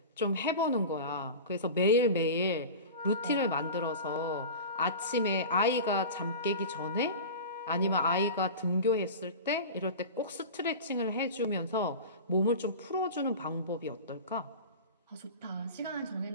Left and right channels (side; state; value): both; inverted; correlation -0.31